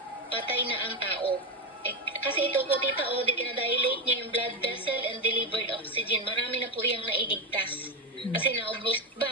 patay na ang tao. Kasi ito po tita, dinadilate niya yung blood vessel and delivered oxygen. Marami na po yung nailigtas. Kasi naubos,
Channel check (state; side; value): normal; both; correlation 0.10